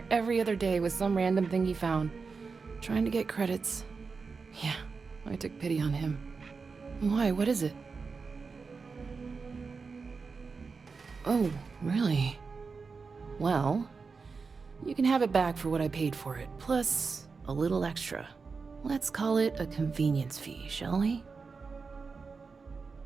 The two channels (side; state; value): left; quieter; 4.8 dB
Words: every other day with some random thing he found. Trying to get credits. Yeah, I took pity on him. Why, what is it? Oh, really? Well, you can have it back for what I paid for it, plus a little extra. Let's call it a convenience fee, shall we?